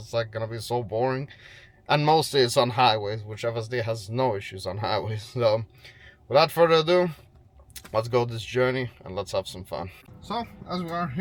like gonna be so boring. And mostly it's on highways, which FSD has no issues on highways. So without further ado, let's go this journey and let's have some fun. So as we are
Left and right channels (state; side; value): identical; both; correlation 1.00